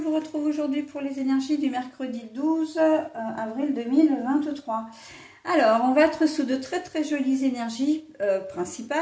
retrouve aujourd'hui pour les énergies du mercredi 12 avril 2023. Alors, on va être sous de très jolies énergies,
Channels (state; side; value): identical; both; correlation 1.00